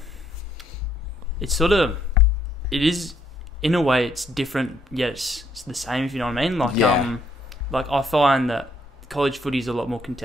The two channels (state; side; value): normal; both; correlation 0.70